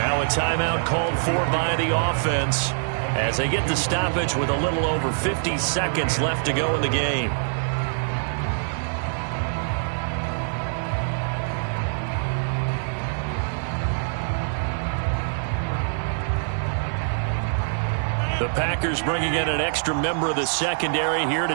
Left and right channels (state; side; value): silent; left; digital silence